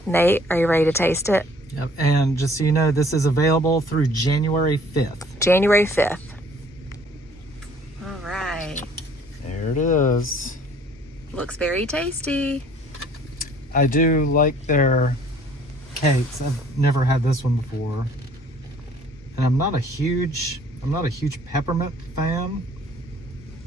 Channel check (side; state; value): both; normal; correlation 0.56